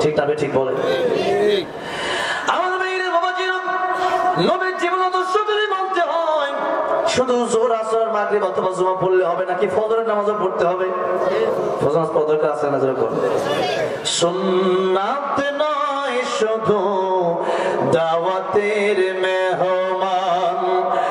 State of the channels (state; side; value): identical; both; correlation 1.00